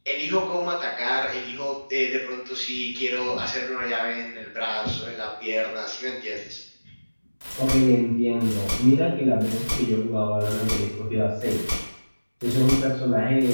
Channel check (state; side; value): inverted; both; correlation -1.00